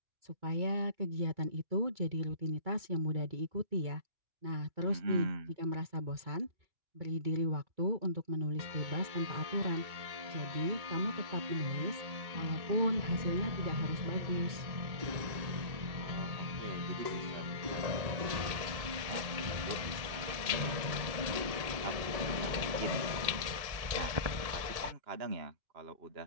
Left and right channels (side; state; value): left; late; 1.8 ms